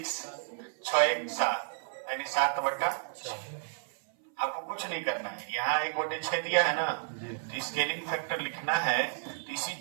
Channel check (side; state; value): left; silent; 56 dB below the other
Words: 6 1 7, यानी 7/6। आपको कुछ नहीं करना है, यहाँ 1/6 दिया है ना, तो स्केलिंग फैक्टर लिखना है तो इसी